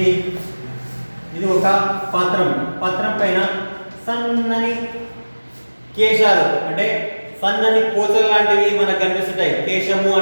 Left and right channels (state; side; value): inverted; both; correlation -1.00